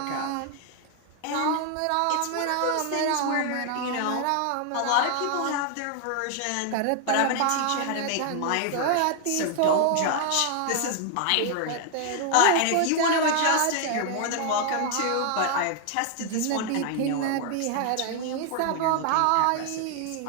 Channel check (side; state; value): both; different; correlation 0.00